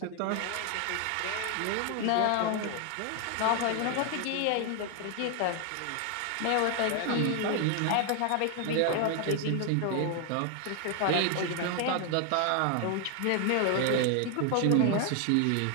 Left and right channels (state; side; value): different; both; correlation 0.00